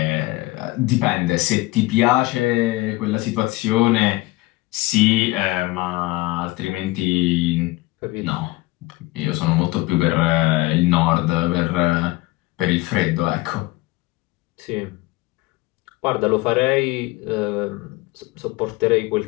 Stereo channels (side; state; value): right; quieter; 20.4 dB